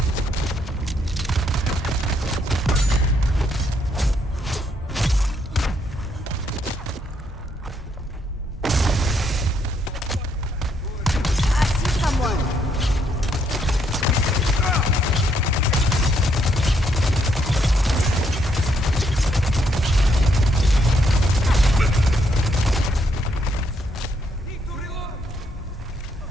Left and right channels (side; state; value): both; normal; correlation 0.73